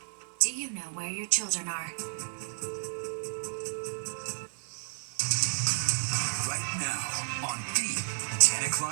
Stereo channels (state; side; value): silent; left; digital silence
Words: Do you know where your children are? Right now on the 10